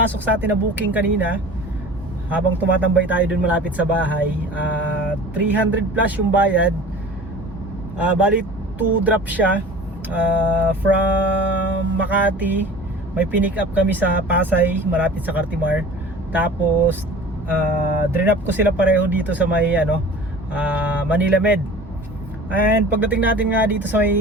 sa atin na booking kanina. Habang tumatambay tayo dun malapit sa bahay, 300 plus yung bayad. Bali 2 drop siya from Makati. May pinick up kami sa Pasay, malapit sa Cartimar. Tapos drop ko sila pareho dito sa may Manila Med. And pagdating natin nga dito sa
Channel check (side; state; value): both; normal; correlation 0.41